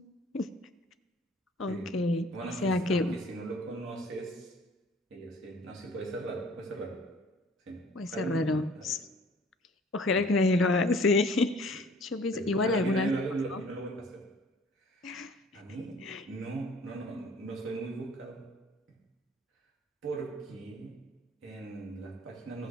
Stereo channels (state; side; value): normal; both; correlation 0.52